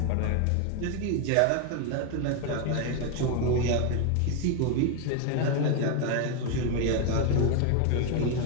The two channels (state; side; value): different; both; correlation 0.01